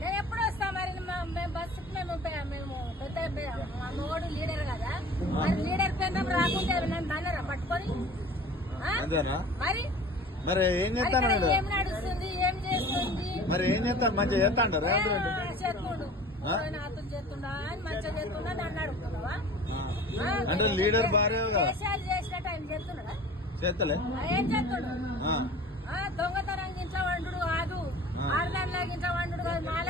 నేను ఎప్పుడు వస్తా మరి మేము బస్సుకి మేము పెద్ద మా మోడు లీడర్ కదా మరి లీడర్ కేంద్రం రాకుంటే నన్ను బాగా పట్టుకొని అంతేనా మరి మరి ఏం చేస్తాను ఏం నడుస్తుంది ఏం చేస్తుంది మరి ఏం చేస్తాను మంచిగా చేస్తా అంటారు చేస్తుండు నాతో చేస్తుండా అని మంచిగా చేస్తుండా నన్ను అడుగుతున్నావా అంటే లీడర్ భార్య దేశాలు చేసినట్టు ఆయన చేస్తున్నాడా చేస్తలే ఏం చేస్తుండు దొంగతనం గించ వండు కాదు ఆడదానిలా గించ వండు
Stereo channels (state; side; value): normal; both; correlation 0.42